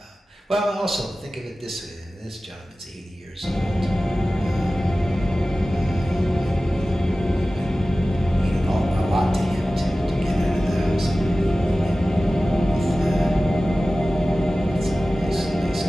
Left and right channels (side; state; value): both; normal; correlation 0.96